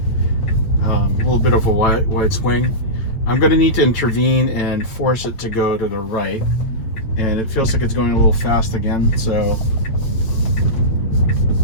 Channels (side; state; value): right; late; 8.5 ms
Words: A little bit of a wide swing. I'm going to need to intervene and force it to go to the right. And it feels like it's going a little fast again. So,